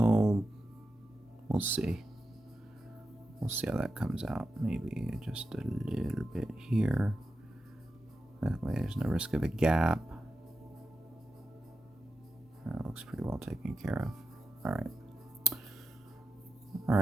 we'll see. We'll see how that comes out. Maybe just a little bit here. That way there's no risk of a gap. That looks pretty well taken care of. Alright.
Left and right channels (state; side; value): normal; both; correlation 0.89